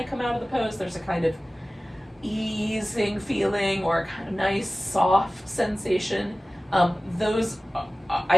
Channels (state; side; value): normal; both; correlation 0.97